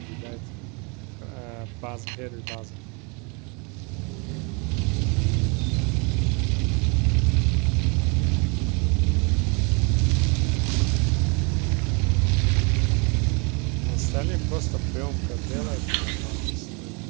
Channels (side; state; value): left; quieter; 31.6 dB